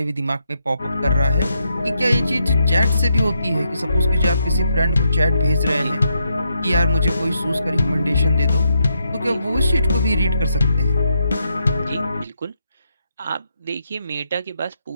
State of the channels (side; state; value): both; inverted; correlation -0.81